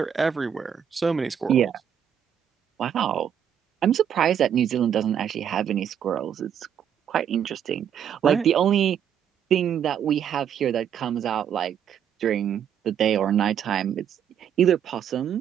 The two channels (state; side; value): quieter; left; 8.8 dB